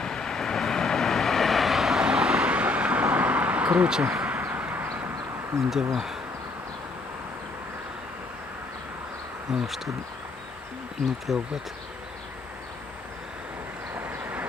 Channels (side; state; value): right; quieter; 3.4 dB